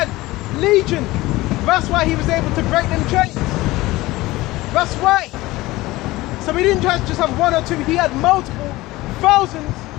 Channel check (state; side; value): quieter; right; 19.0 dB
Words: Legion. That's why he was able to break them chains. That's why. So he didn't just have one or two, he had multiple thousands